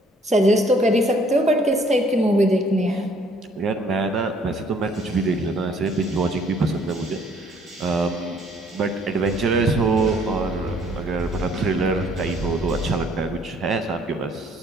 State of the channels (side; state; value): both; normal; correlation 0.61